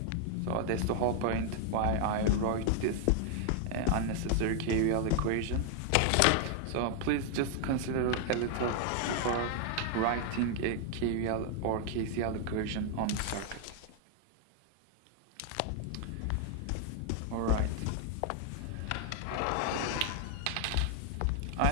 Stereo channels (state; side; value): different; both; correlation 0.00